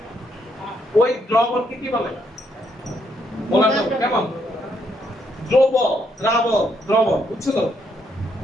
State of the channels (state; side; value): normal; both; correlation 0.74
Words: ওই দ্রবণকে কি বলে মোলার দ্রবণ কেমন দ্রবক বুঝছো তো